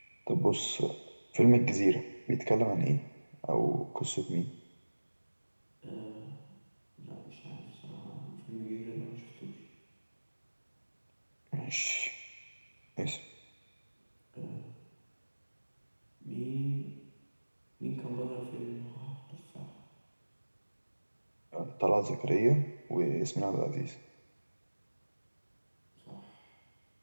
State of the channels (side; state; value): both; inverted; correlation -1.00